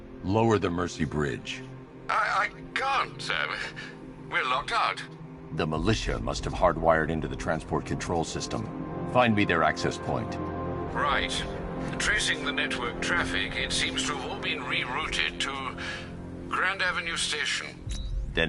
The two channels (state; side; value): identical; both; correlation 1.00